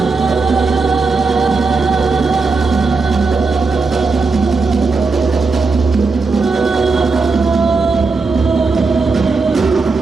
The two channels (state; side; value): quieter; left; 4.1 dB